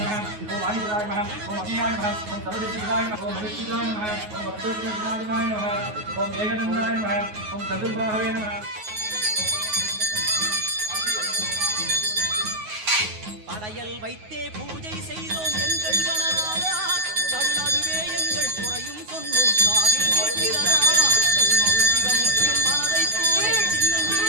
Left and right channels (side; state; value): left; late; 9.5 ms